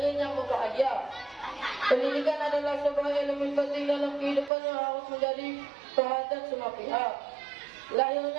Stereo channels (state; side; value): drops out; left; at 4.5 s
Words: yang berbahagia, pendidikan adalah sebuah elemen penting dalam kehidupan yang harus menjadi perhatian semua pihak.